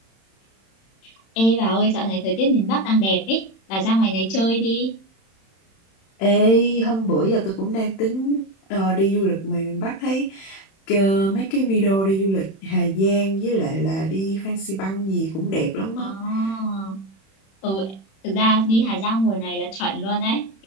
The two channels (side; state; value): right; late; 31 ms